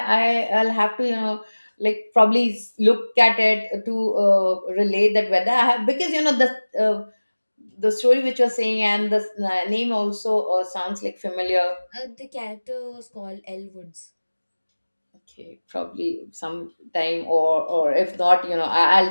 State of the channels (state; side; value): inverted; both; correlation -1.00